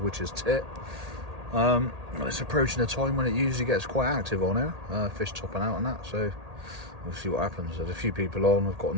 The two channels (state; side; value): late; left; 1.8 ms